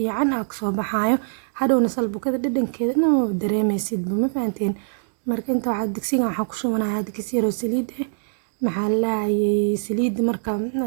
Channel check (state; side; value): silent; left; digital silence